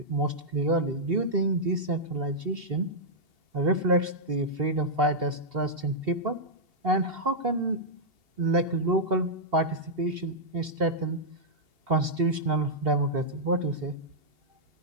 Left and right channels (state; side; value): late; left; 2.8 ms